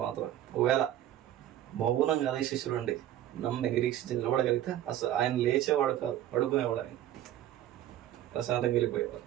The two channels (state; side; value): quieter; left; 12.4 dB